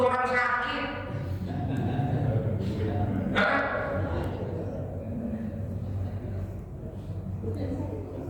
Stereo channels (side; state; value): both; identical; correlation 1.00